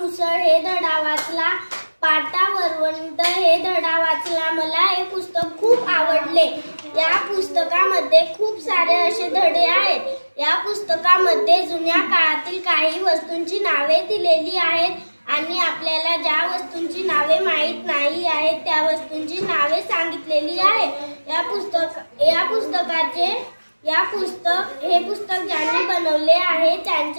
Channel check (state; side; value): inverted; both; correlation -1.00